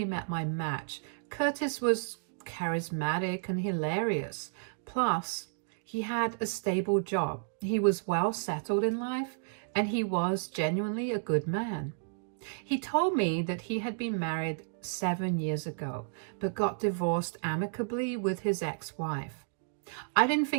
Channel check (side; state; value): left; silent; digital silence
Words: met my match. Curtis was charismatic and hilarious. Plus, he had a stable job. He was well settled in life, and he was genuinely a good man. He told me that he had been married 7 years ago, but got divorced amicably with his ex-wife. I didn't